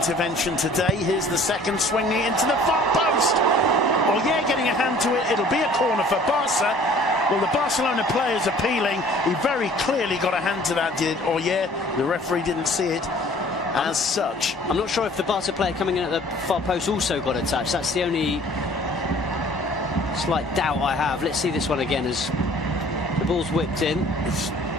today. Here's the second, swinging into the far post. Oyer getting a hand to it. It'll be a corner for Barca. Well, the Barcelona player's appealing. He very clearly got a hand to that, did Oyer. The referee didn't see it as such. I'm not sure if the Barca player coming in at the far post also got a touch. That's the only slight doubt I have. Let's see this one again as the ball's whipped in.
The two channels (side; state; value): both; normal; correlation 0.52